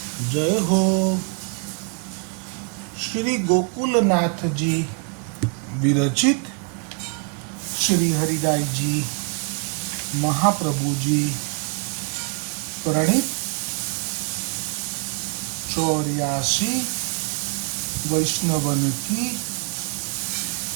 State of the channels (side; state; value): left; quieter; 38.7 dB